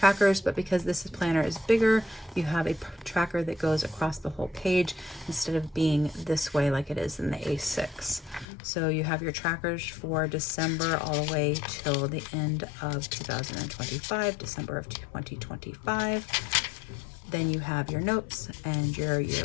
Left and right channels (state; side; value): drops out; right; at 8.5 s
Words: but because this planner is bigger, you have a tracker that goes across the whole page instead of being this way like it is in the A6. So you have your trackers for December all the way till the end of 2025, December of 2025. Then you have your notes and your